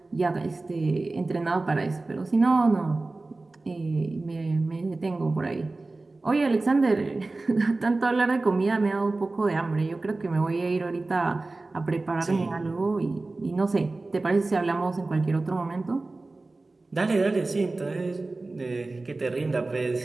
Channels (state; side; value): quieter; left; 3.3 dB